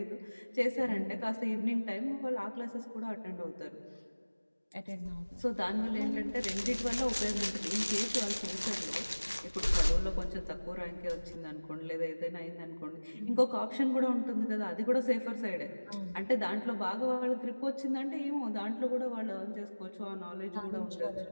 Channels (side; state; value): both; inverted; correlation -1.00